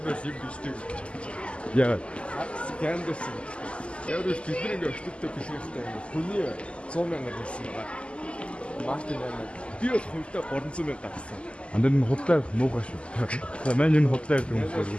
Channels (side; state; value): right; late; 0.055 ms